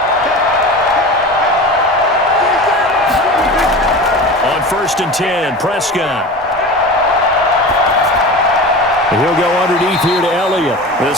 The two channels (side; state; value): both; normal; correlation 0.32